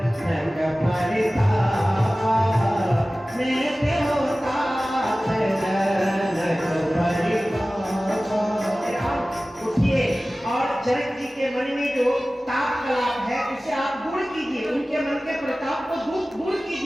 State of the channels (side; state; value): both; normal; correlation 0.97